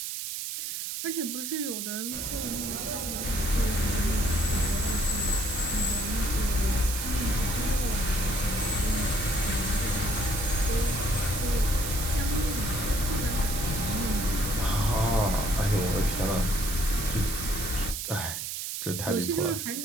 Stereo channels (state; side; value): noise; right; hiss, 4 dB below the sound